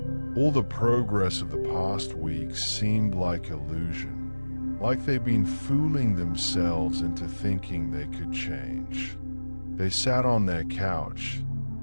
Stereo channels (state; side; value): inverted; both; correlation -1.00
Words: All the progress of the past weeks seemed like illusion, like they'd been fooling themselves into thinking they could change. They sat on their couch,